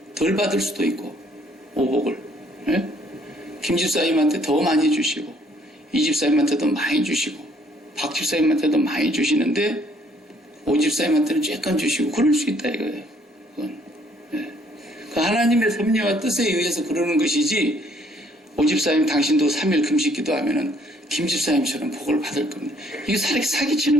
덜 받을 수도 있고, 오복을 김 집사님한테 더 많이 주시고, 이 집사님한테도 많이 주시고, 박 집사님한테도 많이 주시는데 오 집사님한테는 조금 주시고, 그럴 수 있다 이거예요. 그건. 그 하나님의 섭리와 뜻에 의해서 그러는 것이지, 오 집사님 당신도 3일 금식 기도하면은 김 집사님처럼 복을 받을 겁니다. 이게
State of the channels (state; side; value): normal; both; correlation 0.64